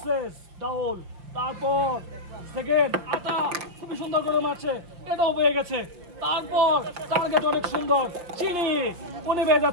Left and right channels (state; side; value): late; left; 5.5 ms